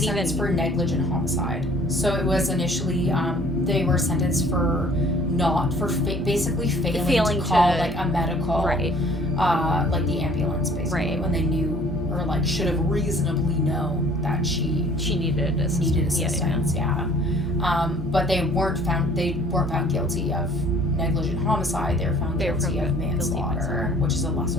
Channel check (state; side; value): normal; both; correlation 0.54